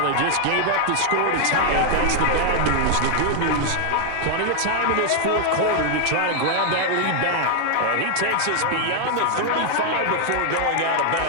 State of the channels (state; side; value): different; both; correlation 0.00